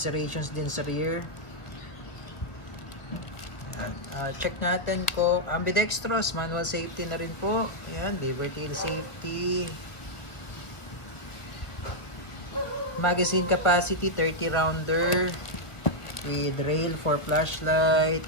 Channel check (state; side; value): late; right; 1.3 ms